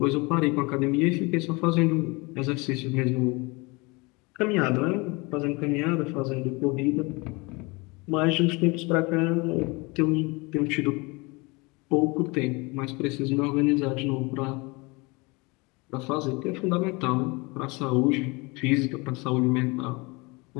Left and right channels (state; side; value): quieter; right; 26.5 dB